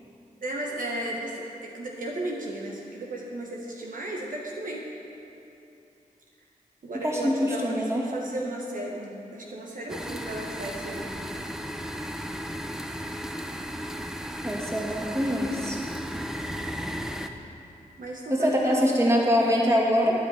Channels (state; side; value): normal; both; correlation 0.75